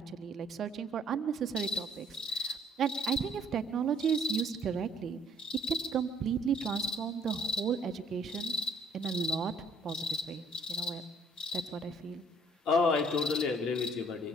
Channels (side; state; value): both; normal; correlation 0.59